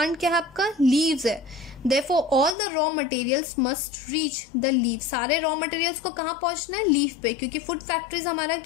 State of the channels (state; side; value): drops out; right; at 2.6 s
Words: क्या है? आपका लीव्स है। Therefore all the raw materials must reach the leaf. सारे raw materials को कहाँ पहुंचना है? लीफ पे, क्योंकि फूड फैक्ट्रीज हमारा